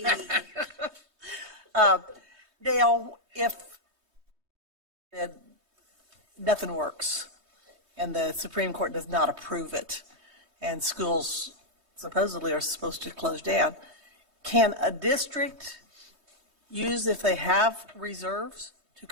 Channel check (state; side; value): late; left; 3.2 ms